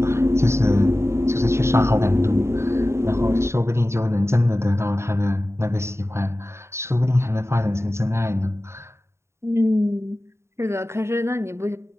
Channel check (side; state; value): left; late; 0.13 ms